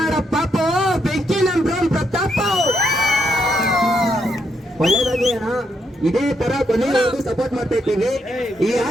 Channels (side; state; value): both; normal; correlation 0.78